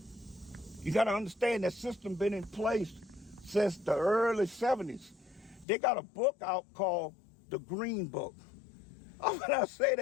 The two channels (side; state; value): right; drops out; at 5.7 s